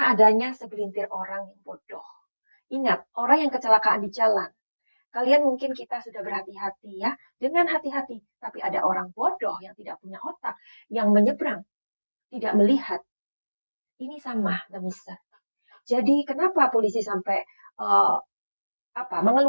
adanya segelintir orang yang bodoh. Ingat, orang yang kecelakaan di jalan. Kalian mungkin kita sudah berhati-hati ya, dengan hati-hati. Tapi ada orang bodoh yang tidak punya otak, yang menyeberang, tidak melihat. Ini sama demiser. Jadi kenapa polisi sampai uh,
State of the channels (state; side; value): inverted; both; correlation -1.00